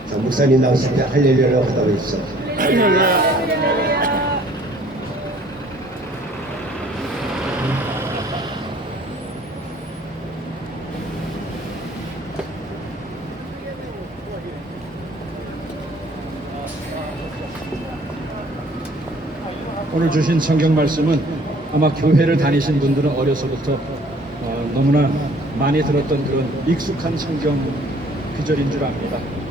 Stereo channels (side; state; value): both; normal; correlation 0.56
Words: 자, 목사님 나오실 때 할렐루야라고 하다고 해주세요. 오늘 주신 성경 말씀은 아마 교회를 다니신 분들은 어려서부터 너무나 많이 들었던 그런 익숙한 성경 구절인 줄 압니다.